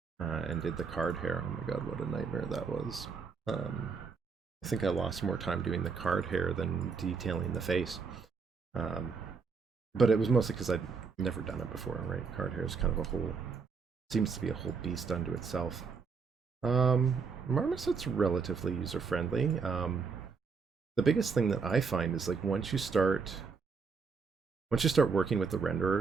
and did the card hair. Oh my god, what a nightmare that was. I think I lost more time doing the card hair than detailing the face. But it was mostly because I'd never done it before, right? Card hair is kind of seems to be a whole beast unto itself. Marmoset's relatively user-friendly. The biggest thing that I find is like once you start working with the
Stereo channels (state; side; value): quieter; left; 5.2 dB